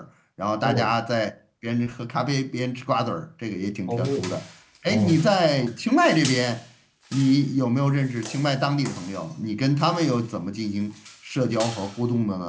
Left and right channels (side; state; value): both; identical; correlation 1.00